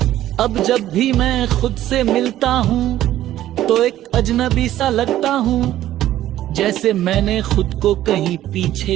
अब जब भी मैं खुद से मिलता हूं तो एक अजनबी सा लगता हूं, जैसे मैंने खुद को कहीं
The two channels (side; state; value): left; quieter; 13.3 dB